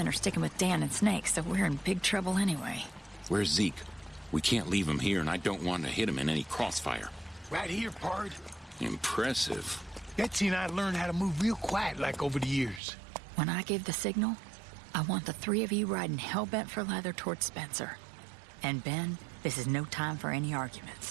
are sticking with Dan and Snake, so we're in big trouble anyway. Where's Zeke? We can't leave him here, and I don't want to hit him in any crossfire. Right here, pard. Impressive. Betsy and I learned how to move real quiet like over the years. When I give the signal, I want the 3 of you riding hell-bent for leather towards Spencer. And Ben, this is no time for any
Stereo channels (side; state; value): left; drops out; at 12.8 s